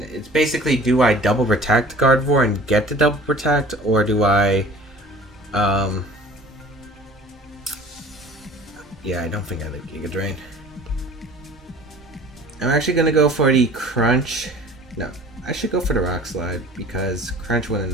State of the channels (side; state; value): both; normal; correlation 0.46